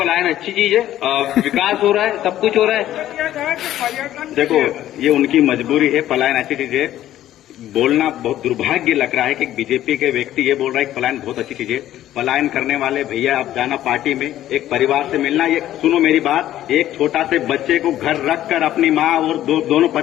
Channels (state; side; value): quieter; right; 12.9 dB